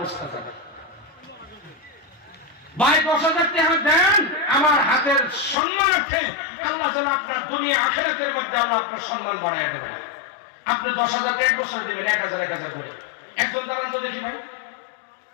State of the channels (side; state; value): right; drops out; at 5.6 s